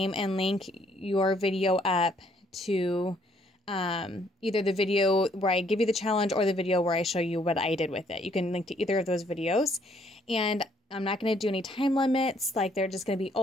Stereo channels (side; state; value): both; normal; correlation 0.67